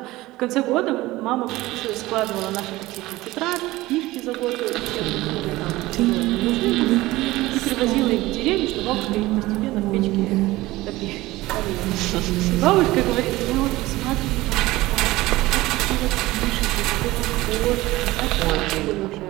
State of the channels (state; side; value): quieter; left; 18.5 dB